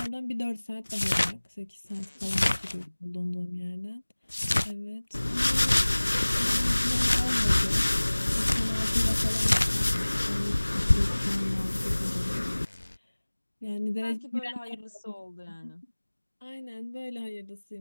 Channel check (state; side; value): inverted; both; correlation -1.00